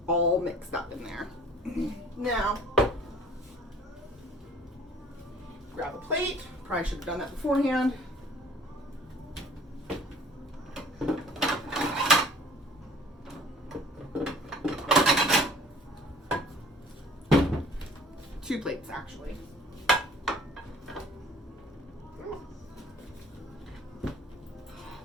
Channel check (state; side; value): normal; both; correlation 0.51